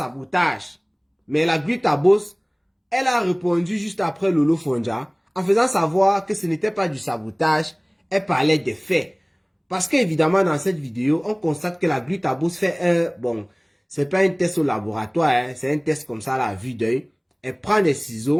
mais la Gluta Boss, elle a répondu juste après Lolo Fonja en faisant savoir que ce n'était pas du sabotage, elle parlait des faits. Parce qu'évidemment, dans cette vidéo, on constate que la Gluta Boss fait c'est pas un test au laboratoire, hein, c'est un test comme ça à la vue d'œil. Elle prend des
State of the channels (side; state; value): both; identical; correlation 1.00